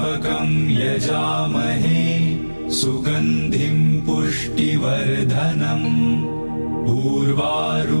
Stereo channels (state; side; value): inverted; both; correlation -1.00